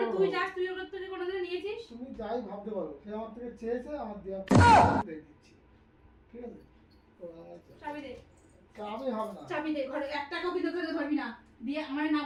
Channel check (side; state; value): both; identical; correlation 1.00